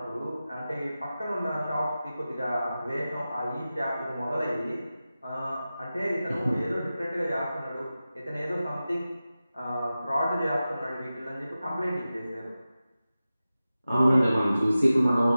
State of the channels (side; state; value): both; inverted; correlation -0.94